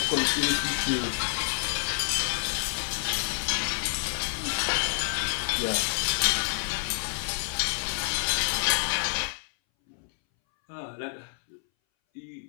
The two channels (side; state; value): right; silent; 59 dB below the other